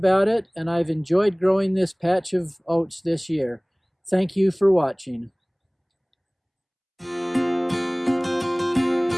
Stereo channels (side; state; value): both; identical; correlation 1.00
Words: it, and I've enjoyed growing this patch of oats this year. Thank you for watching.